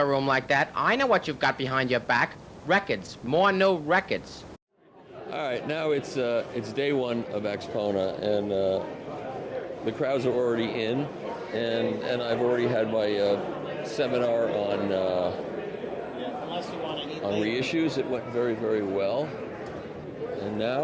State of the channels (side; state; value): both; identical; correlation 1.00